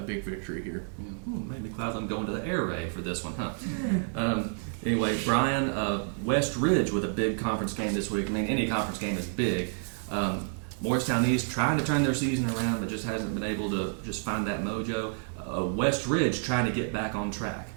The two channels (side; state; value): left; silent; 58 dB below the other